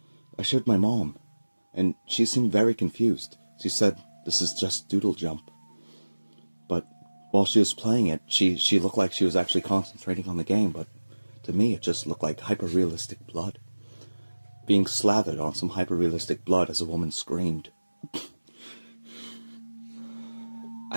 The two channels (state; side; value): inverted; both; correlation -1.00